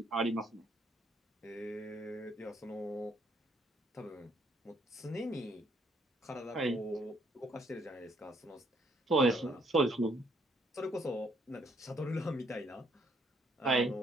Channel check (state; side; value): normal; both; correlation 0.69